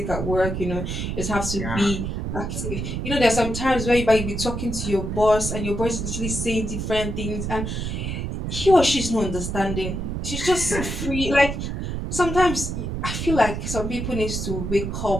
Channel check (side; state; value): right; noise; rumble, 3 dB below the sound